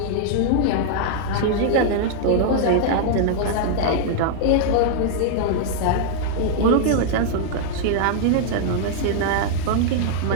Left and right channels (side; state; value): both; different; correlation -0.01